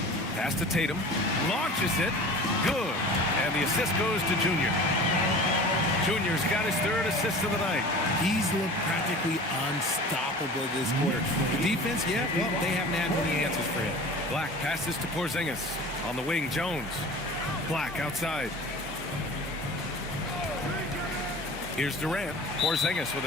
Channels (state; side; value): normal; both; correlation 0.39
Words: Pass to Tatum. Launches it. Good. And the assist goes to Junior. Junior's got his 3rd assist of the night. He's looked practically unstoppable this quarter. The defense, yeah, well, they haven't had many answers for him. Black passes to Porzingis. On the wing, Jones. Black outside. Here's Durant. Porzingis with